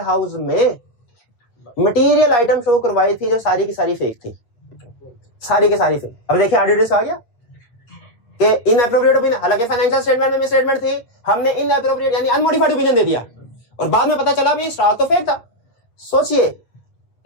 हाउस में मटेरियल आइटम शो करवाई थी जो सारी की सारी फेक थी, सारी की सारी फेक। अब देखिए ऑडिटर्स आ गया कि इनएप्रोप्रिएट ओपिनियन, हालांकि फाइनेंशियल स्टेटमेंट में मिसस्टेटमेंट थी, हमने इनएप्रोप्रिएट यानी अनमोडिफाइड ओपिनियन दे दिया और बाद में पता चला भी स्टॉक तो फेक था। सोचिए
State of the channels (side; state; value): right; late; 8.6 ms